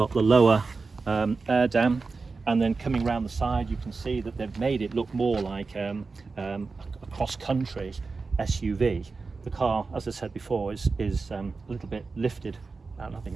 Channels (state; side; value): quieter; left; 4.2 dB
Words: the lower air dam, and then coming around the side, you can see that they've made it look more like a cross-country SUV. The car, as I said before, is a little bit lifted. I think